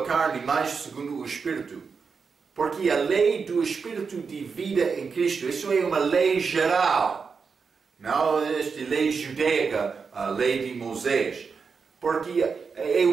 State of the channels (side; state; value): left; quieter; 5.4 dB